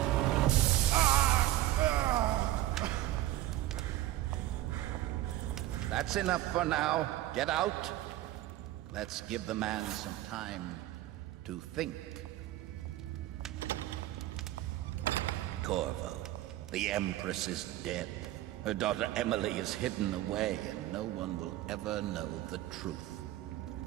That's enough for now. Get out. Let's give the man some time to think. Corvo, the Empress is dead. Her daughter Emily is hidden away, and no one will ever know the truth.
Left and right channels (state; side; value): quieter; left; 14.8 dB